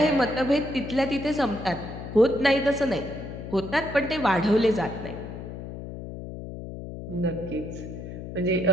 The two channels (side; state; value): left; noise; hum, 10 dB below the sound